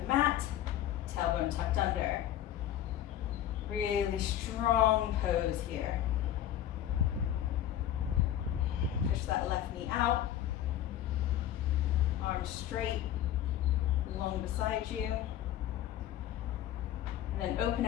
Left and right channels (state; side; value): quieter; right; 11.7 dB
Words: mat, tailbone tucked under. Really strong pose here. Push that left knee out. Arms straight, long beside you. And then open